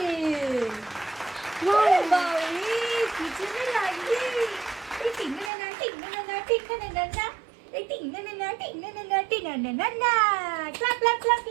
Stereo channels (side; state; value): left; drops out; at 5.5 s